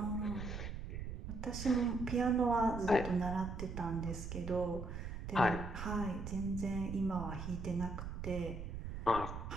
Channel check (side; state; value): right; noise; rumble, 6 dB below the sound